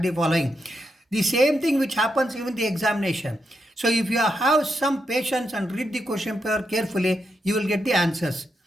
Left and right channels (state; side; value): normal; both; correlation 0.83